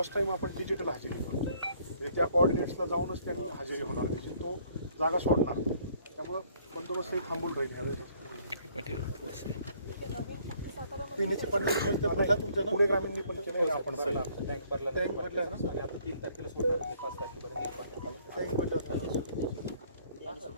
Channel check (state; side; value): inverted; both; correlation -0.62